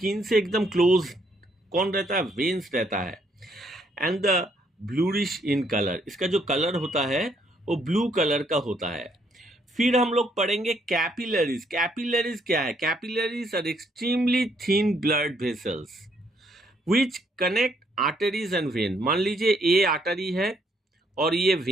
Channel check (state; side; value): normal; both; correlation 0.70